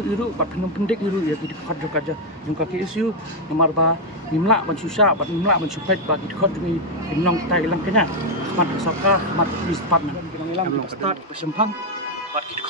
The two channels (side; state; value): both; normal; correlation 0.02